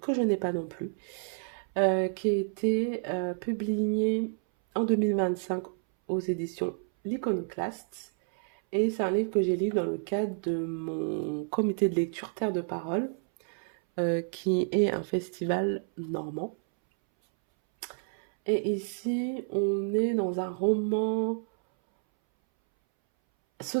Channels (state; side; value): silent; left; 58 dB below the other